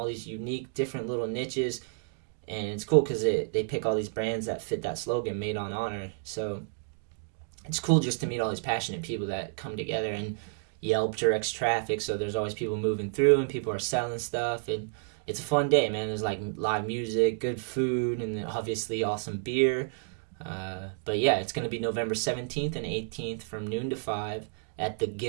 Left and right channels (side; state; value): left; silent; digital silence